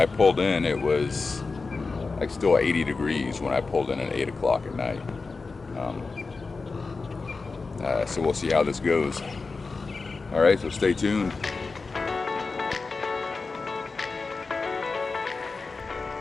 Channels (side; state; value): right; quieter; 4.2 dB